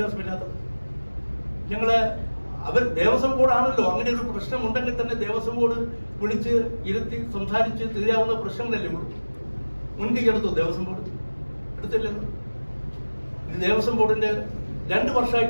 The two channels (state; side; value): inverted; both; correlation -1.00